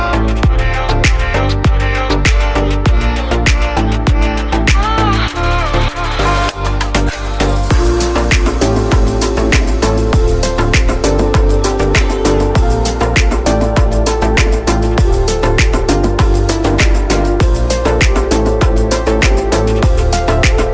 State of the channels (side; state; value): both; identical; correlation 1.00